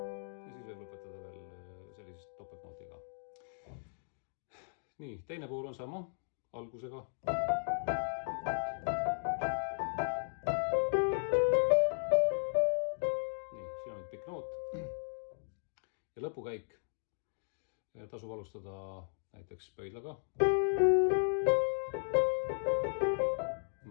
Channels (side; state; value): right; silent; digital silence